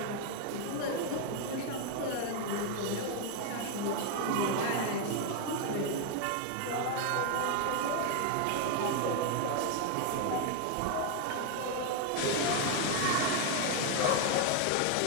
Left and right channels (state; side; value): different; both; correlation 0.01